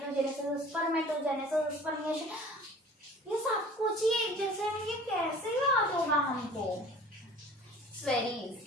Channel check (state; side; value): normal; both; correlation 0.46